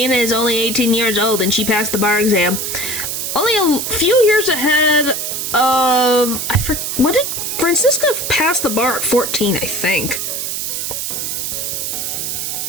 is only 18 years old and she passed the bar exam. Only a few years ahead of... What did Francisca pass the bar at 14, I think.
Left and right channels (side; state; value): right; noise; hiss, 3 dB below the sound